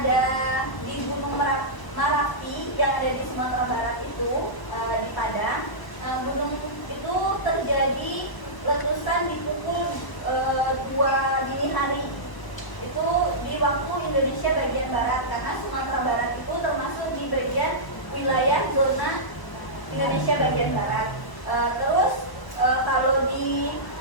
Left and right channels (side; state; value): right; late; 1.0 ms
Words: ada di Gunung Merapi yang ada di Sumatera Barat itu, di Padang. Gunung itu terjadi letusan di pukul 2 dini hari. Itu di waktu Indonesia bagian barat, karena Sumatera Barat itu termasuk di bagian wilayah zona Indonesia bagian barat. Terus kalau di